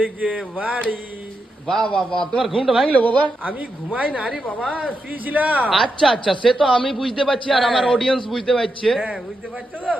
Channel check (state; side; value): normal; both; correlation 0.85